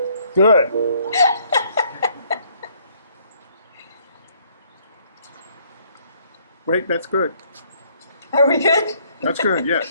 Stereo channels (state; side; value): inverted; both; correlation -0.65